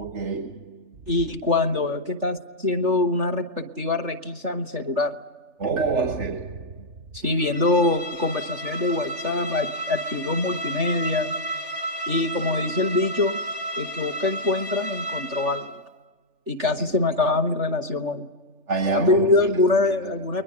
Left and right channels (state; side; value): late; left; 3.4 ms